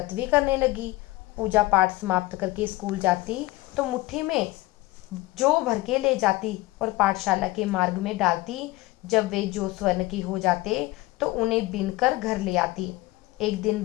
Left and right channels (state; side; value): quieter; right; 19.7 dB